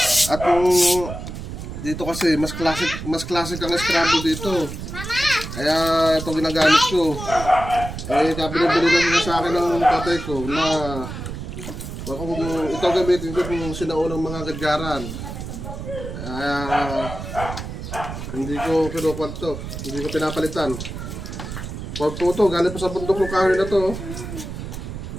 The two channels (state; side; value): noise; right; rumble, 8 dB below the sound